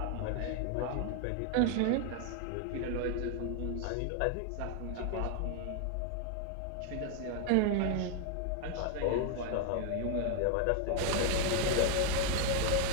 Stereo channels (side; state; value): both; different; correlation 0.00